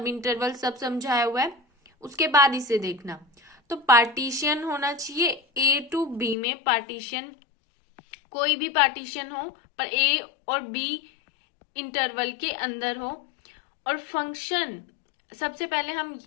इंटरवल सब समझाया हुआ है, उसके बाद इसे देखना। तो पार्टीशन होना चाहिए ए टू बी में, पार्टीशन कोई भी पार्टीशन हो पर ए और बी इंटरवल के अंदर हो। और फंक्शन, सबसे पहले हम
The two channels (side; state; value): right; drops out; at 6.4 s